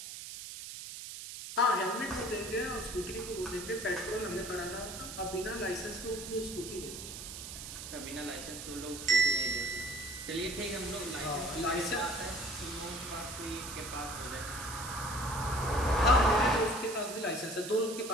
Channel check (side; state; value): right; noise; hiss, 9 dB below the sound